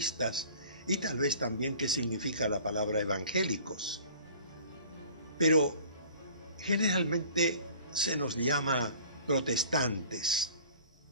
y tal vez también qué significa la palabra evangélicos. Pero generalmente se nos llama protestantes.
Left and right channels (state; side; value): inverted; both; correlation -0.47